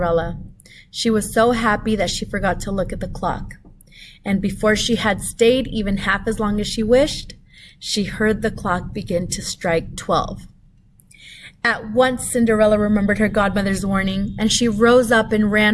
She was so happy that she forgot to look at the clock. And before she had stayed even half as long as she wished, she heard the clock begin to strike 12. At once Cinderella remembered her godmother's warning, and she rose up and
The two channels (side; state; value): both; identical; correlation 1.00